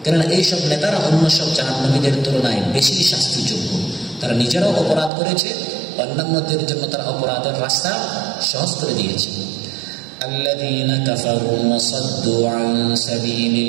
কেননা এইসব নেতারা অন্য সব জাহান্নামীদের তুলনায় বেশি শাস্তিযোগ্য। তারা নিজেরাও অপরাধ করেছে, অন্যান্যদের জন্য তারা অপরাধের রাস্তা সহজ করে দিয়েছে। الذين كفروا وصدوا عن سبيل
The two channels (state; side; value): drops out; left; at 5.1 s